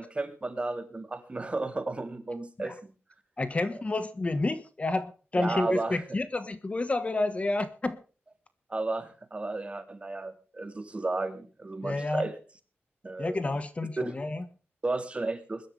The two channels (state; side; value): normal; both; correlation 0.92